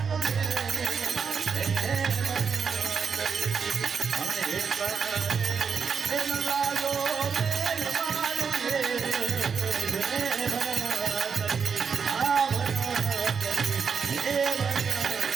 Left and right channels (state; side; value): quieter; left; 6.1 dB